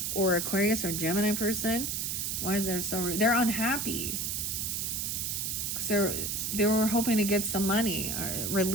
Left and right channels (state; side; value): noise; right; hiss, 1 dB below the sound